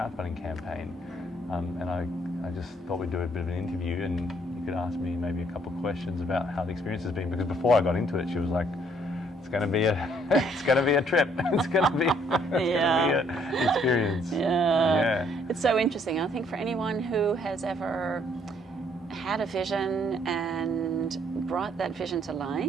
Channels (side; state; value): both; normal; correlation 0.66